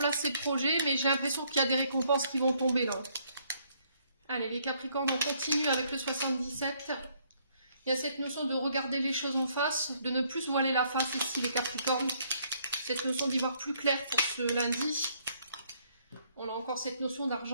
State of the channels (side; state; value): both; inverted; correlation -0.68